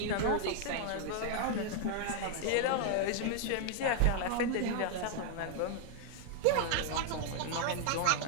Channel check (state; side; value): different; both; correlation 0.00